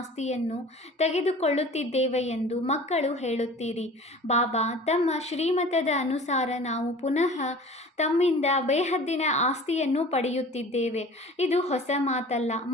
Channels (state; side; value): normal; both; correlation 0.43